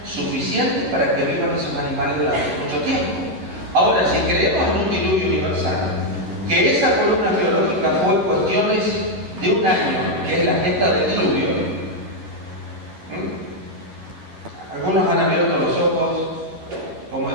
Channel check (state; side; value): late; left; 11 ms